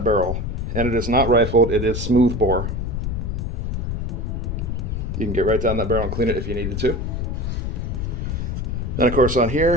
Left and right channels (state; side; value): noise; left; rumble, 2 dB below the sound